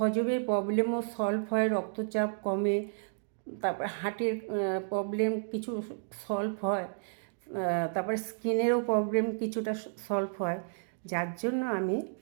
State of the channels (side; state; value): left; silent; digital silence